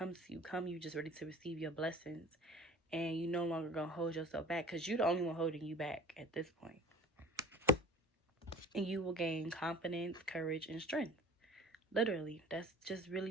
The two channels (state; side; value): normal; both; correlation 0.45